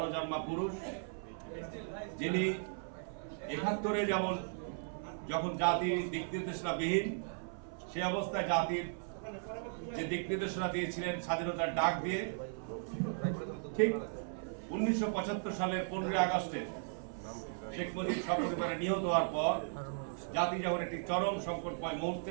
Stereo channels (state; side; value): silent; left; 53 dB below the other